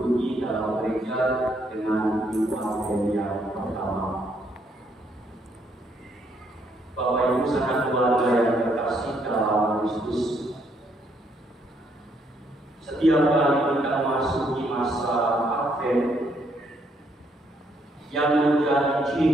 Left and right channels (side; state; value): both; normal; correlation 0.72